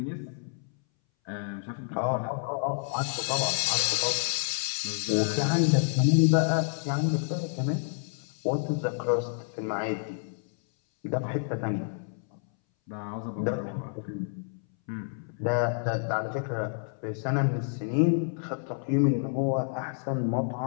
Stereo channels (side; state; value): right; silent; 59 dB below the other